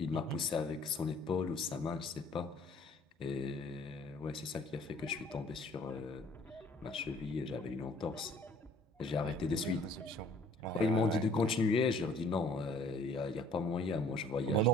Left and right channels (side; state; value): both; normal; correlation 0.56